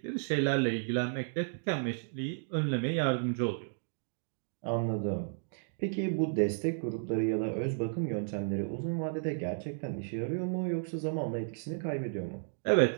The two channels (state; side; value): silent; left; digital silence